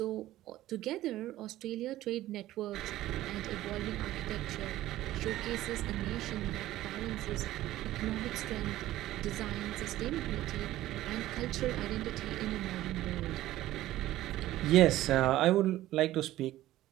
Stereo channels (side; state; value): left; quieter; 15.0 dB